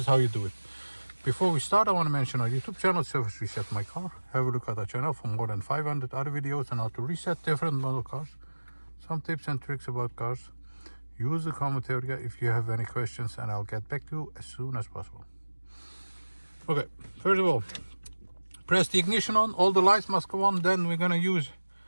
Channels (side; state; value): both; inverted; correlation -1.00